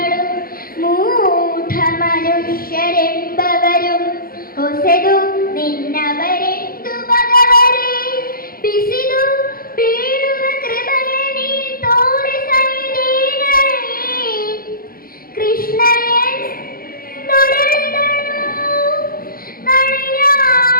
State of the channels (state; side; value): late; right; 0.42 ms